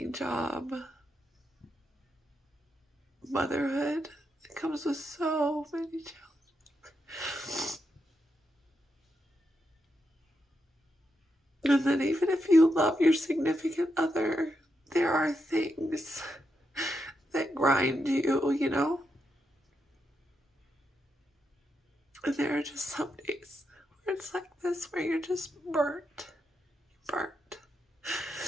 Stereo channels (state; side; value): normal; both; correlation 0.84